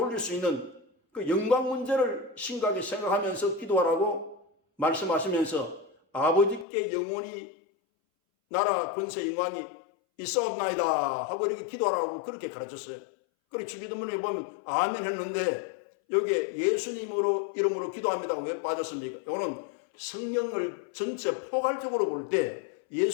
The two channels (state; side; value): drops out; right; at 6.7 s